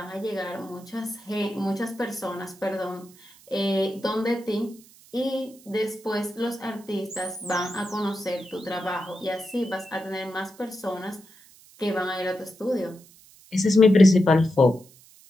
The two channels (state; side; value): noise; right; hiss, 25 dB below the sound